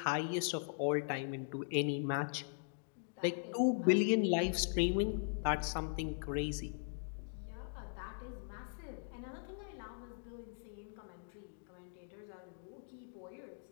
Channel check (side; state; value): right; silent; digital silence